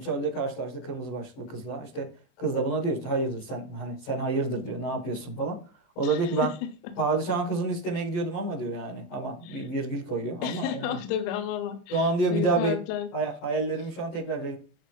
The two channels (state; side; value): late; right; 24 ms